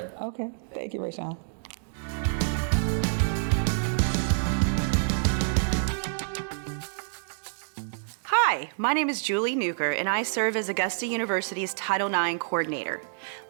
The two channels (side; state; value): left; silent; digital silence